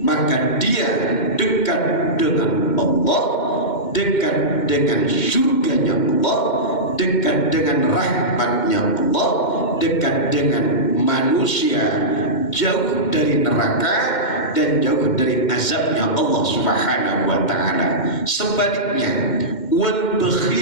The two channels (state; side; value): late; right; 2.1 ms